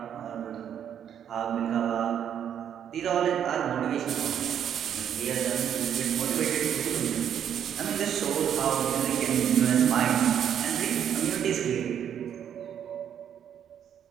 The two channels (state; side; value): quieter; left; 9.1 dB